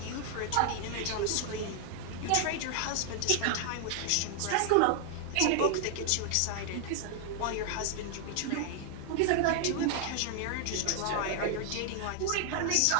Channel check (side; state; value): both; different; correlation 0.00